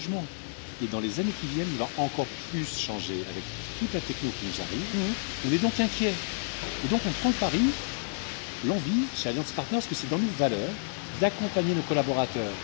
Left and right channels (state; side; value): silent; right; digital silence